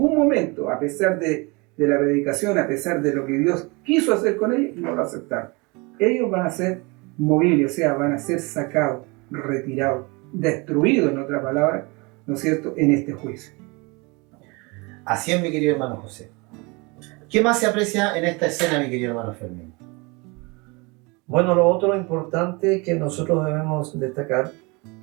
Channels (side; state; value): left; quieter; 27.4 dB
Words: momento, a pesar de la predicación, a pesar de lo que Dios quiso hacer con ellos, no lo aceptaron. Ellos van a ser movibles, o sea, van a ser sacados, retirados, destruidos, en otra palabra, ¿no es cierto?, en este juicio. Así es, mi querido hermano José. ¿Qué más se aprecia en esta escena, mi querido hermano Fermín? Bueno, lo otro importante que nosotros debemos destacar,